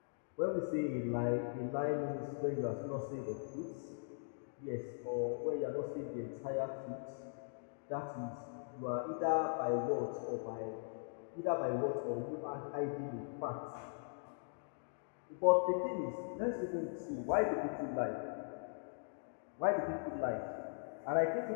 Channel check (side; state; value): right; silent; digital silence